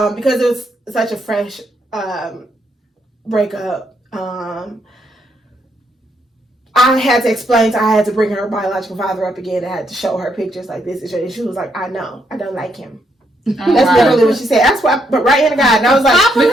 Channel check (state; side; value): normal; both; correlation 0.77